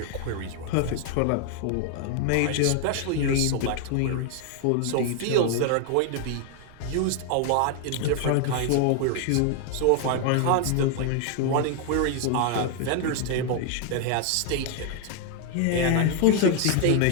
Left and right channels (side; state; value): both; different; correlation 0.00